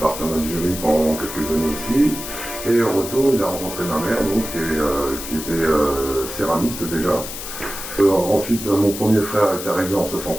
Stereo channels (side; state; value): left; noise; hiss, 9 dB below the sound